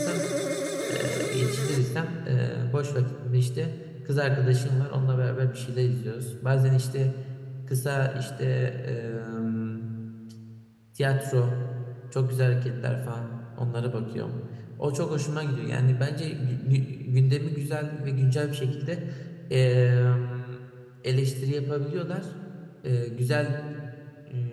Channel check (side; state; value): both; identical; correlation 1.00